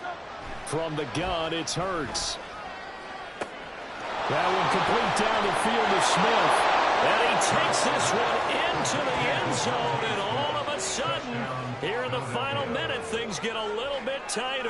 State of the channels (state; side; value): identical; both; correlation 1.00